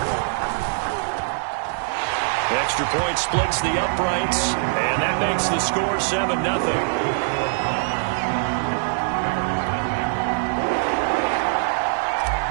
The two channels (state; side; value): silent; left; 64 dB below the other